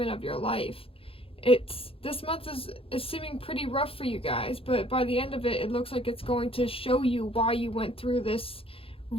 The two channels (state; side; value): late; right; 0.27 ms